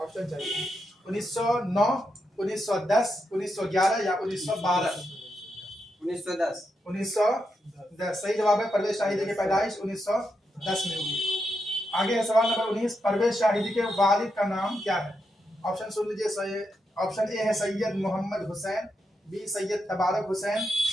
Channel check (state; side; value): normal; both; correlation 0.84